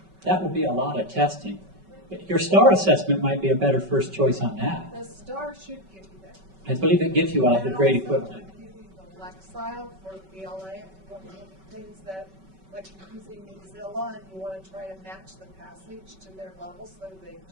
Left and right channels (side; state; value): left; late; 5.3 ms